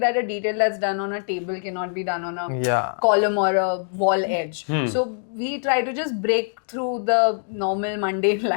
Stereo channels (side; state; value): right; silent; digital silence